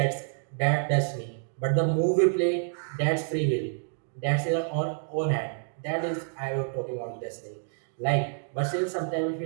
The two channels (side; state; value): left; silent; digital silence